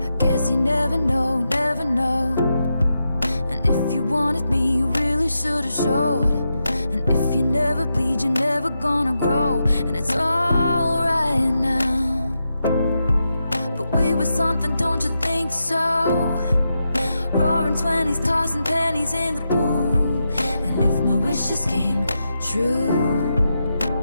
I guess you never know, never know. And if you wanted me, you really should've showed. And if you never bleed, you're never gonna grow. And it's alright now. But we were something, don't you think so? Roaring 20s, tossing pennies in the pool. And if my wishes came true,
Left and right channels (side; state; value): both; inverted; correlation -0.87